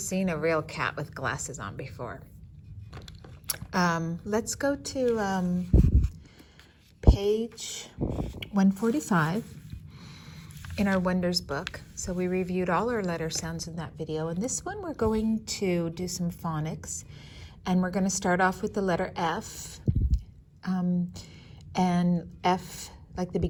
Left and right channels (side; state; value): both; identical; correlation 1.00